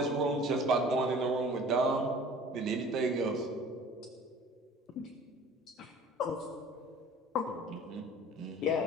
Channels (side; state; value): both; normal; correlation 0.46